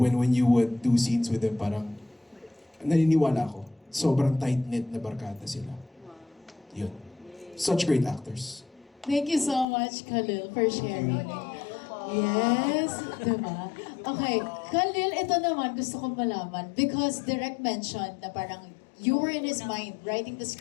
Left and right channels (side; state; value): right; drops out; at 9.7 s